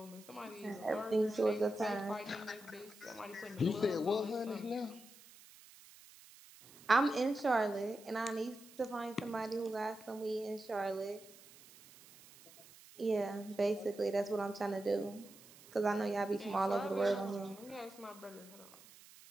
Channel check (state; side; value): noise; right; hiss, 21 dB below the sound